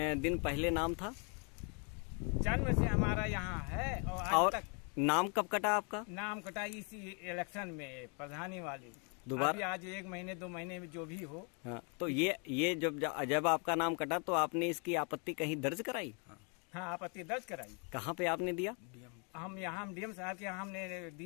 दिन पहले नाम था? जन्म से हमारा यहाँ है और आज तक। नाम कब कटा आपका? नाम कटा इसी इलेक्शन में, प्रधानी वाली दोबारा। आज 1 महीने 2 महीने में जो भी हो। हाँ, तो ये जब आपका नाम कटा तो आपने इसकी आपत्ति कहीं दर्ज कराई? हाँ, आपत्ति दर्ज कराई। कहाँ पे आपने दिया? हम यहाँ डीएम साहब के यहाँ हमने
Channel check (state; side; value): quieter; right; 37.1 dB